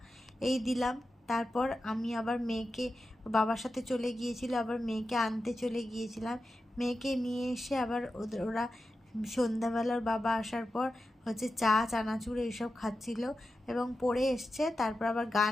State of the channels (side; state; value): both; normal; correlation 0.91